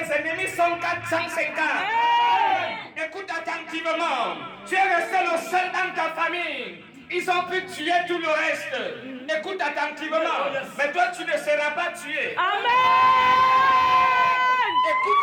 ennemis sont 450. Écoute attentivement. Tu es resté le seul dans ta famille. Ils ont pu tuer tout le reste. Écoute attentivement. Mais toi, tu ne seras pas tué. Amen.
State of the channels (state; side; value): identical; both; correlation 1.00